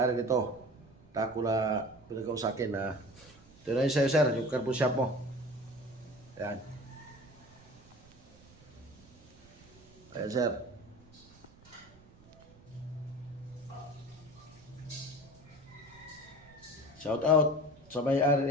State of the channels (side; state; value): right; noise; rumble, 25 dB below the sound